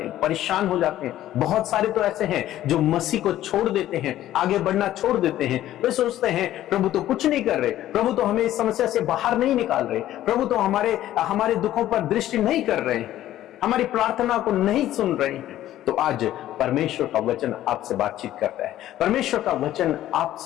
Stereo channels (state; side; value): quieter; right; 13.3 dB